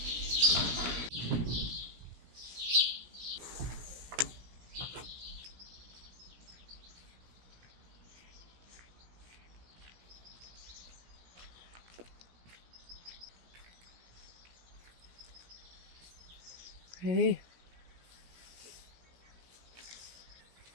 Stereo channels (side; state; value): left; late; 17 ms